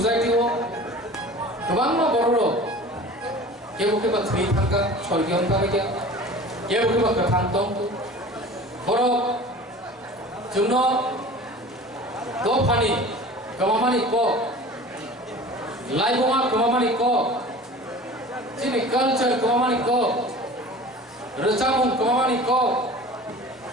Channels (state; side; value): normal; both; correlation 0.40